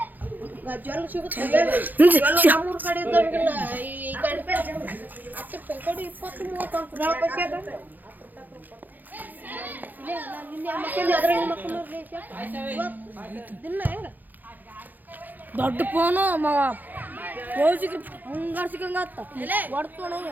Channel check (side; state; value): left; late; 0.085 ms